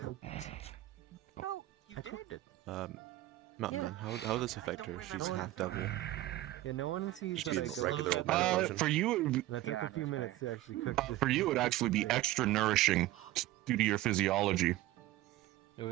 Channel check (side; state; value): left; quieter; 15.8 dB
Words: Oh, you I cooked it. Mountain Man, how will this affect her? She's half devil. Yeah, no one sees that She's I regular go. old mana potion. For you, And I took a few minutes to actually cook it. for you, it would actually be extra nourishing due to your physiology. It